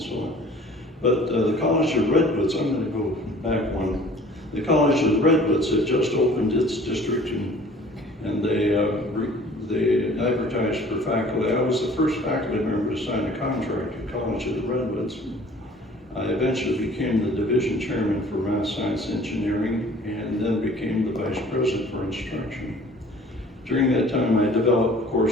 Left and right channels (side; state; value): both; normal; correlation 0.50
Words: so on. But the College of Redwoods, I'm going to go back one. The College of Redwoods had just opened its district, and they advertised for faculty. I was the first faculty member to sign a contract at College of the Redwoods. I eventually became the division chairman for math, science, engineering, and then became the vice president for instruction. During that time, I developed